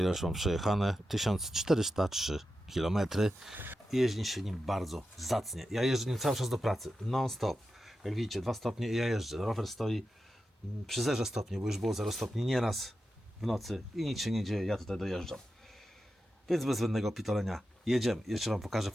ile już mam przejechane. 1403 km. Jeździ się nim bardzo zacnie. Ja jeżdżę nim cały czas do pracy. Non stop. Jak widzicie, 2 stopnie i ja jeżdżę. Rower stoi przy 0 stopni, bo już było 0 stopni nieraz w nocy i nic się nie dzieje, ja tutaj dojeżdżam. Więc bez zbędnego pitolenia jedziemy. Jeszcze Wam pokażę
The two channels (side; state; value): both; normal; correlation 0.90